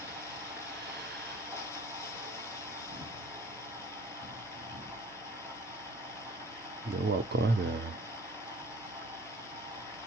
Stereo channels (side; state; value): both; normal; correlation 0.48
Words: Mais waouh, quand même.